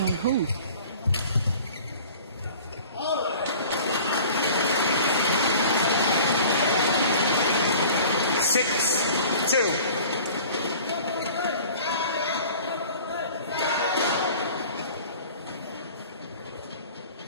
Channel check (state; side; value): inverted; both; correlation -0.45